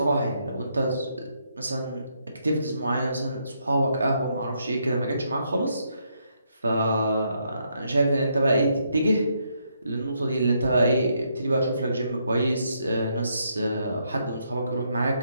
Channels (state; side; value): inverted; both; correlation -0.76